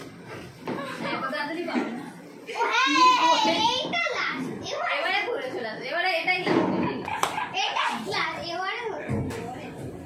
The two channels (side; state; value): both; identical; correlation 1.00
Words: এত তাড়াতাড়ি পাবো না ও হ্যাঁ, এইটা লাস্ট। এবারে ঘুরে চলে আসবে এবারে এটাই লাস্ট এটাই লাস্ট। এবারে হলো।